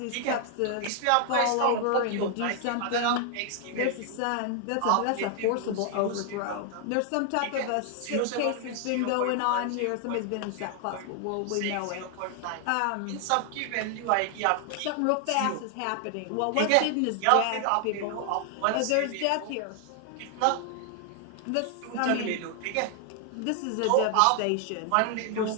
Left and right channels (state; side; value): different; both; correlation 0.00